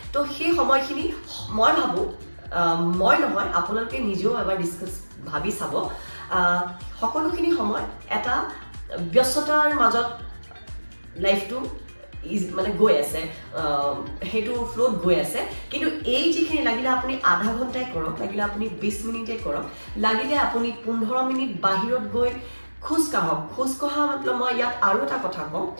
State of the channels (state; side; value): inverted; both; correlation -1.00